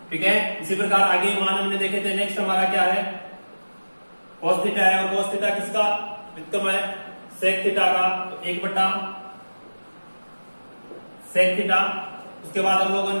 ठीक है, इसी प्रकार आगे मान हमने देखे थे। नेक्स्ट हमारा क्या है, कोस थीटा है, और कोस थीटा किसका व्युत्क्रम है, सेक थीटा का। तो 1 बटा सेक थीटा। उसके बाद हम लोगों ने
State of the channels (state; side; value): inverted; both; correlation -1.00